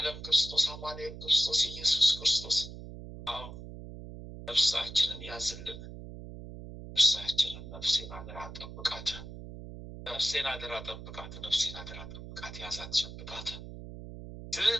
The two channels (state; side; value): noise; right; hum, 12 dB below the sound